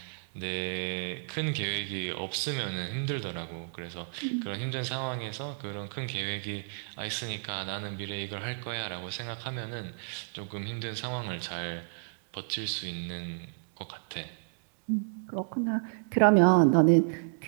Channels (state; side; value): silent; left; digital silence